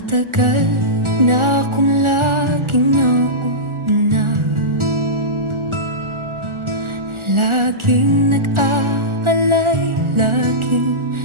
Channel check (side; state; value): left; late; 1.4 ms